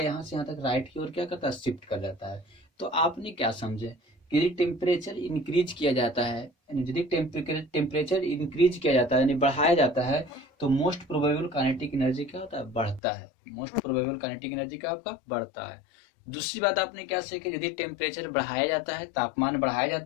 से यहाँ तक राइट की ओर क्या करता है, शिफ्ट कर जाता है। तो आपने क्या समझे कि यदि टेम्परेचर इंक्रीज किया जाता है, यदि टेम्परेचर इंक्रीज किया जाता है यानी बढ़ाया जाता है, तो मोस्ट प्रोबेबल काइनेटिक एनर्जी क्या होता है, बढ़ता है। मोस्ट प्रोबेबल काइनेटिक एनर्जी का आपका बढ़ता है। दूसरी बात आपने क्या सीखी, यदि टेम्परेचर बढ़ाया जाता है, तापमान बढ़ाया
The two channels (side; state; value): right; drops out; at 13.0 s